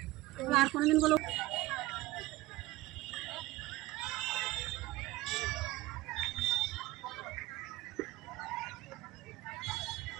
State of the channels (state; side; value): quieter; left; 19.0 dB